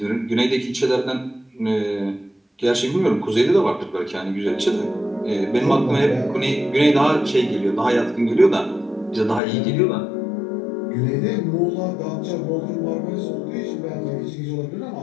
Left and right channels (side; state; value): right; drops out; at 9.4 s